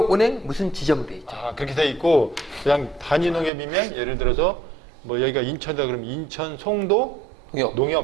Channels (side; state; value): left; drops out; at 3.5 s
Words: 무슨 지점 돼 있죠. 그렇게 돼 있고 그냥 단위 농협이면 예를 들어서 뭐 여기가 인천이다 그러면 인천 송도